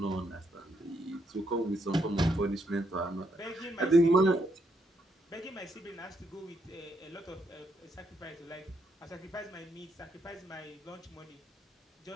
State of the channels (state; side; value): normal; both; correlation 0.77